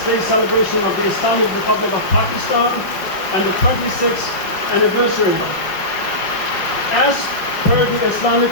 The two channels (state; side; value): late; right; 5.2 ms